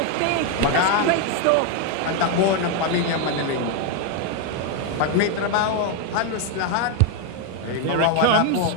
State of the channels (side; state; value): both; different; correlation 0.01